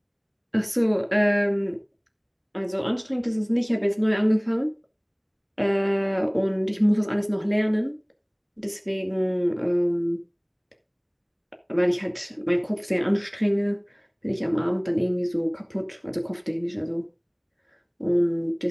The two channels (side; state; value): both; identical; correlation 1.00